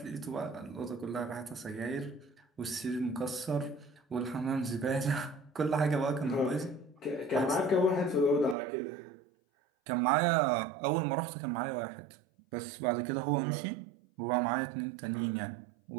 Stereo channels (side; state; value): left; drops out; at 8.6 s